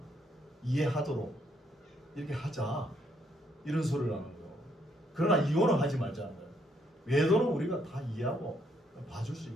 이해하도록 이렇게 하자, 이런 소리를 하는 거예요. 그러나 이혼은 하지 말자는 거예요. 외도는 우리가 다 이해하고 봐줄 수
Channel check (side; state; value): both; normal; correlation 0.72